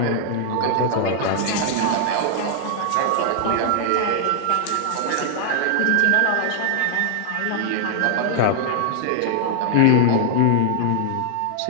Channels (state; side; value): different; both; correlation 0.00